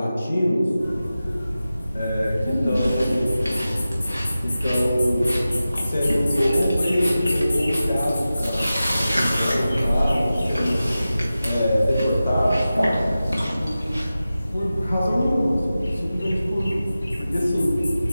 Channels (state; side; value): inverted; both; correlation -0.94